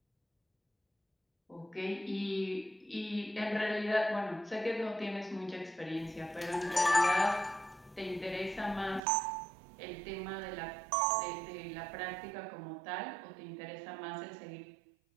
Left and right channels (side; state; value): left; drops out; at 9.0 s